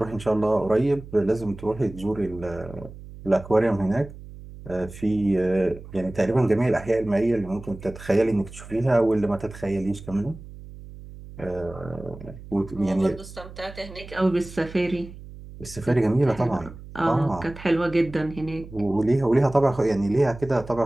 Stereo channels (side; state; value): right; noise; hum, 15 dB below the sound